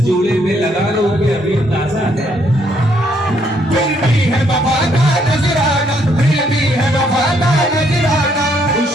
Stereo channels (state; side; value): normal; both; correlation 0.70